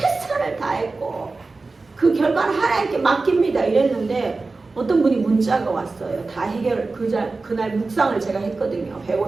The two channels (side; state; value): left; quieter; 3.7 dB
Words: 다했고 그 결과는 하나님께 맡깁니다 이랬는데 어떤 분이 문자가 왔어요. 다 그날 묵상을 제가 했거든요.